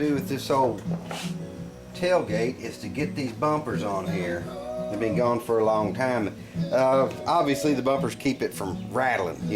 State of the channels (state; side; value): identical; both; correlation 1.00